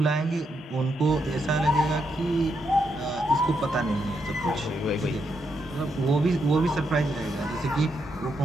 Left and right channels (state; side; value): normal; both; correlation 0.80